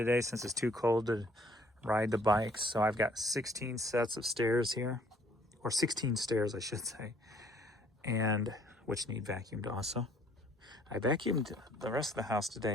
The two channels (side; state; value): both; normal; correlation 0.61